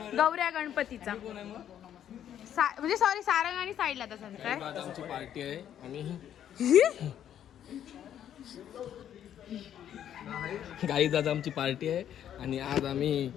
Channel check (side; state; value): right; quieter; 10.2 dB